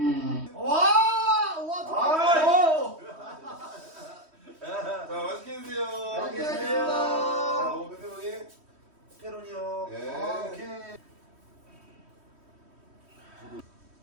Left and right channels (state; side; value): late; left; 3.1 ms